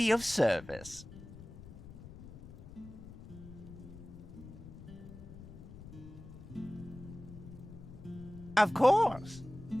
of service? Of course.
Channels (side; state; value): left; noise; rumble, 15 dB below the sound